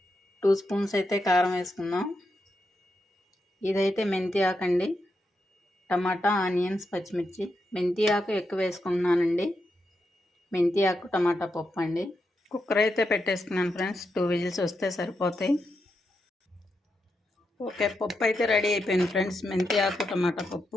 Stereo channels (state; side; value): normal; both; correlation 0.85